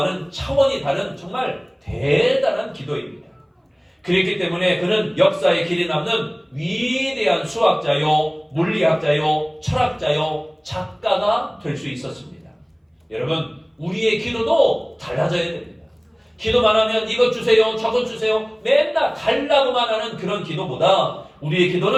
차원이 다른 정말 대단한 기도입니다. 그렇기 때문에 그는 역사의 길이 남는 위대한 수학자요, 물리학자요, 철학자요, 작가가 될 수 있었습니다. 여러분, 우리의 기도도 달라져야 됩니다. 기도만 하면 이것 주세요, 저것 주세요, 맨날 달라고만 하는 그런 기도보다 우리의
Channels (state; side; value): identical; both; correlation 1.00